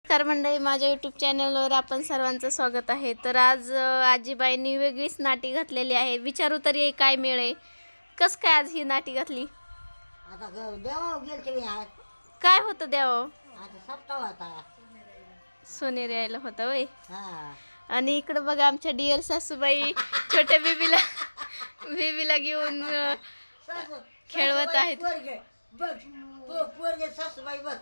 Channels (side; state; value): both; inverted; correlation -1.00